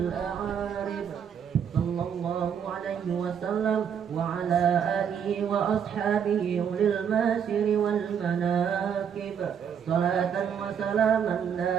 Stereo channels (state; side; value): quieter; left; 7.9 dB